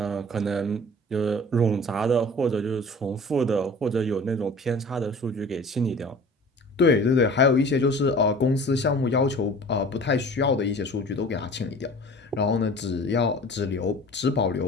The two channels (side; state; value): both; normal; correlation 0.43